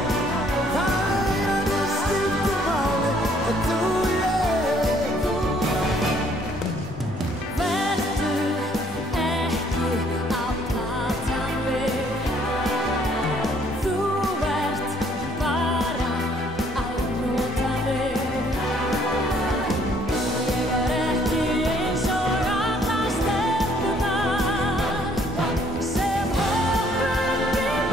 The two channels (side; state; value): both; normal; correlation 0.63